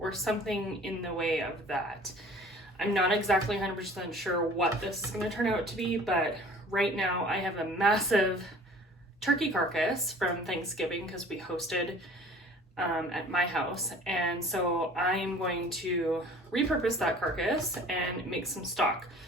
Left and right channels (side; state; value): both; normal; correlation 0.48